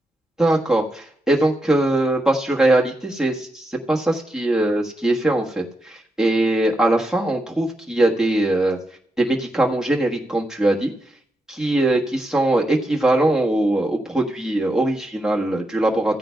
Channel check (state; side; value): normal; both; correlation 0.84